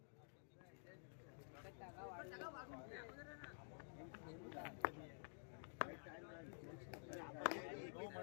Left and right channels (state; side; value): silent; right; digital silence